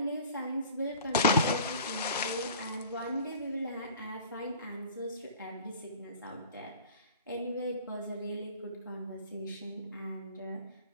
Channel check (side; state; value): both; inverted; correlation -0.44